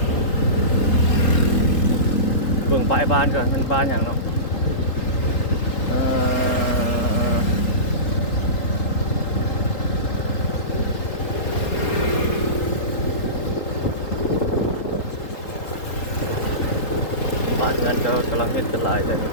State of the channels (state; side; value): late; right; 3.8 ms